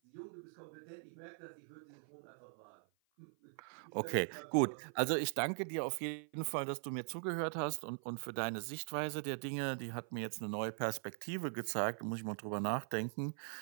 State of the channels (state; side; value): silent; left; 50 dB below the other